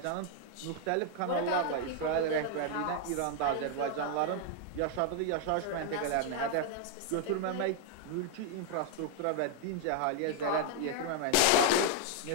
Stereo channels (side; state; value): both; different; correlation 0.00